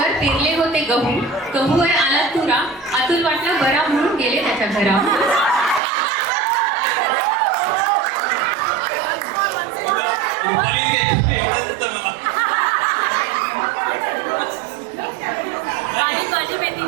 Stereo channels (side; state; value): left; drops out; at 5.8 s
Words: पेरले होते गहू. गहू आहे आला तुरा. अतुल वाटला बरा म्हणून गेले त्याच्या घरा.